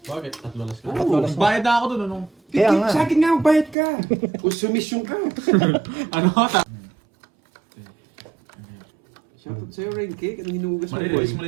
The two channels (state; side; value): drops out; left; at 3.8 s